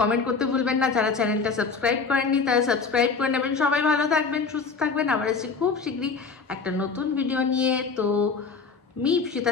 করতে ভুলবেন না। যারা চ্যানেলটা সাবস্ক্রাইব করেননি তারা সাবস্ক্রাইব করে নেবেন। সবাই ভালো থাকবেন, সুস্থ থাকবেন। আবার আসছি খুব শীঘ্রই একটা নতুন ভিডিও নিয়ে। তো me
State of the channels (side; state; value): right; quieter; 4.8 dB